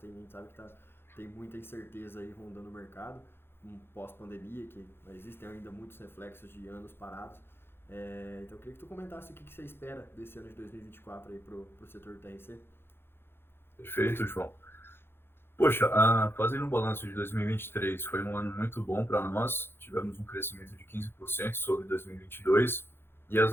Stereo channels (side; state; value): right; late; 0.11 ms